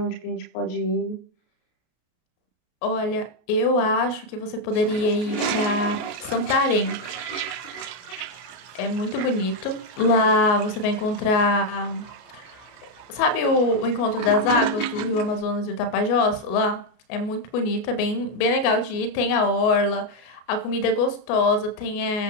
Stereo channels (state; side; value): late; right; 33 ms